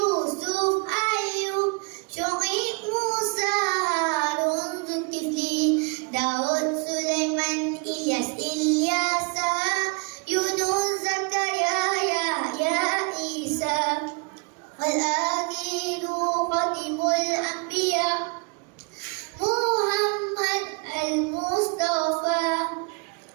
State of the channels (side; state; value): left; quieter; 34.5 dB